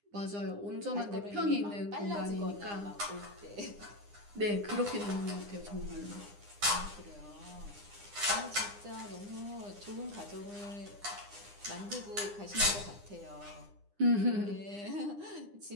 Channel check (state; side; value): late; left; 9.8 ms